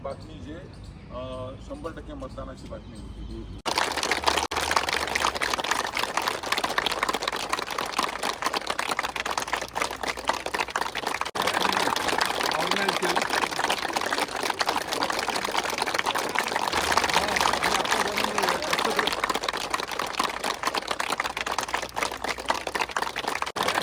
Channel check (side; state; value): both; identical; correlation 1.00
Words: बातमी जे 100% मतदानाची बातमी होती